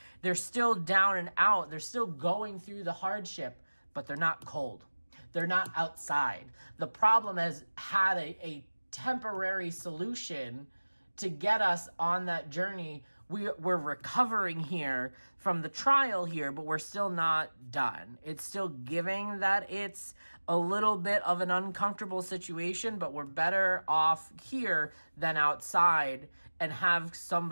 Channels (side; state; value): both; inverted; correlation -1.00